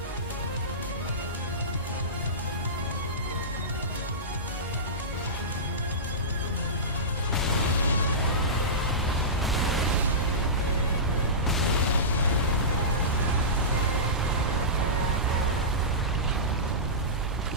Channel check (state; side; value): normal; both; correlation -0.18